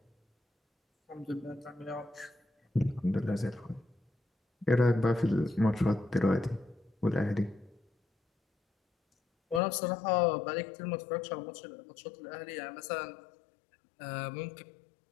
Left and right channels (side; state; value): right; drops out; at 9.6 s